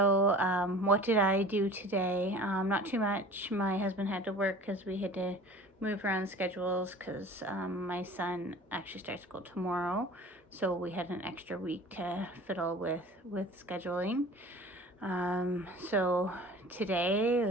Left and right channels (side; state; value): both; normal; correlation 0.42